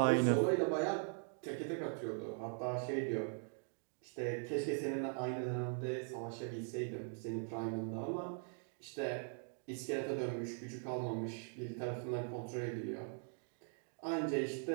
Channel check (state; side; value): silent; left; 50 dB below the other